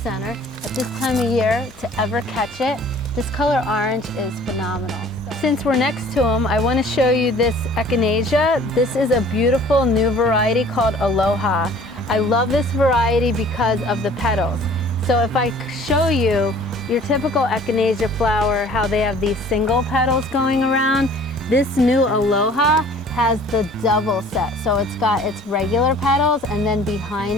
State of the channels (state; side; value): normal; both; correlation 0.51